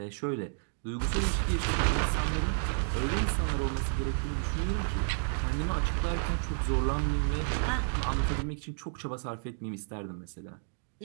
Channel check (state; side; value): silent; left; digital silence